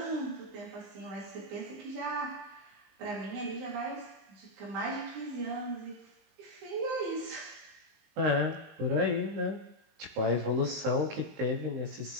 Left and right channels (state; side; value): late; left; 19 ms